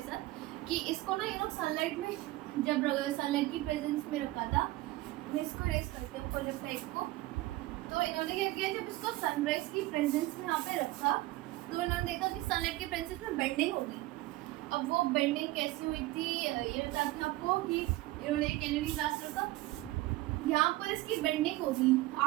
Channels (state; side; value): quieter; left; 18.1 dB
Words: साथ कि इसको ना ये लोग सनलाइट में जब सनलाइट की प्रेजेंस में रखा था, मैं इसको रेस करती हूँ कोलेप्टाइल को। तो इन्होंने क्या किया, जब इसको सनराइज की प्रेजेंस में यहाँ पे रखा तो इन्होंने देखा कि सनलाइट की प्रेजेंस में बेंडिंग होगी। अब वो बेंडिंग कैसी हुई थी ये बताती हूँ आपको कि इन्होंने कैनरी ग्रास रखा, यहाँ पर इसकी बेंडिंग होगी।